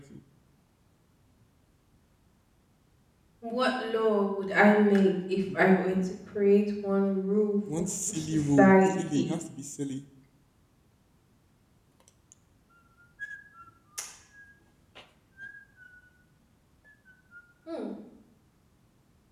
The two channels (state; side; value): identical; both; correlation 1.00